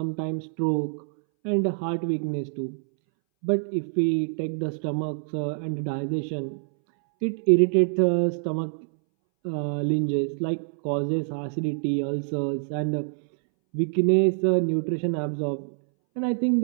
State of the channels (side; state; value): left; silent; 61 dB below the other